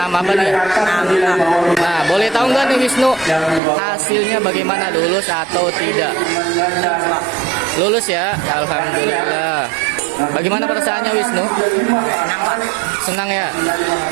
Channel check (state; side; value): drops out; left; at 3.6 s